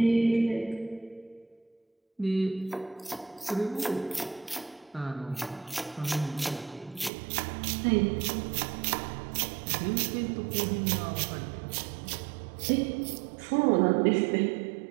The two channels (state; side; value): drops out; left; at 7.1 s